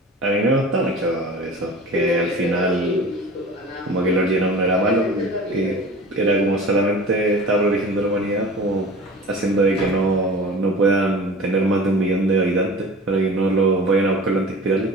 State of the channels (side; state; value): both; normal; correlation 0.39